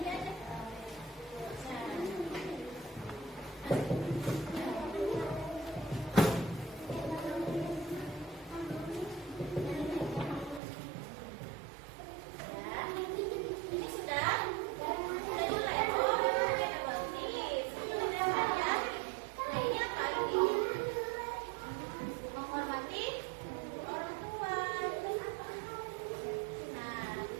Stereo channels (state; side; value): drops out; left; at 10.6 s